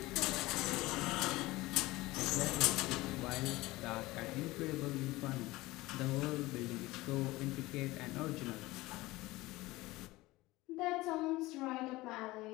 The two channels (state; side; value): quieter; right; 19.6 dB